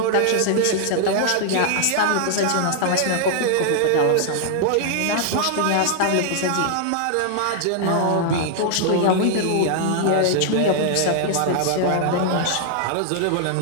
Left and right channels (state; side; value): different; both; correlation 0.00